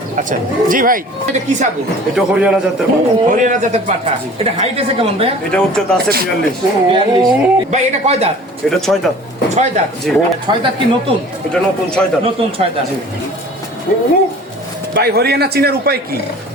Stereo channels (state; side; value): normal; both; correlation 0.45